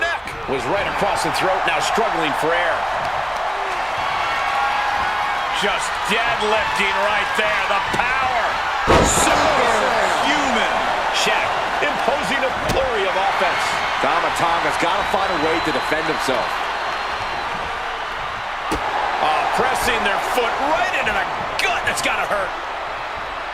Was right across the throat, now struggling for air. Just deadlifting right there, the power. Superhuman. Shaq imposing a flurry of offense. Tomatonga's got to find a way to defend himself. Pressing their foot right into the gut. That's got to hurt.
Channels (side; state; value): both; identical; correlation 1.00